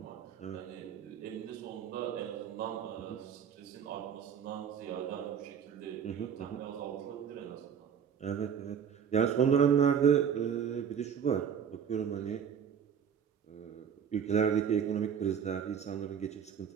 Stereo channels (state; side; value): quieter; left; 7.7 dB